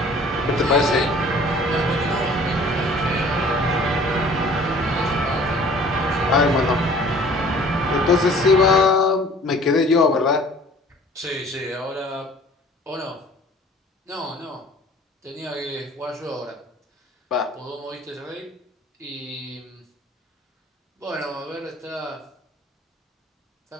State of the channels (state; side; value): normal; both; correlation 0.51